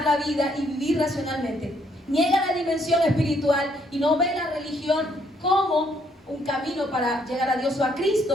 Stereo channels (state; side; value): normal; both; correlation 0.70